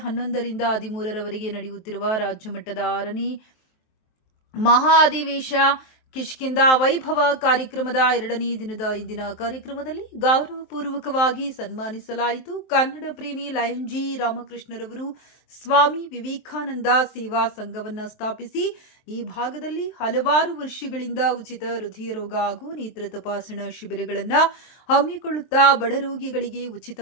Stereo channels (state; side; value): late; right; 23 ms